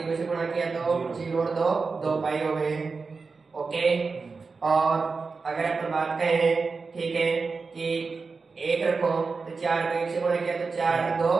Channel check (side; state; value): left; quieter; 4.5 dB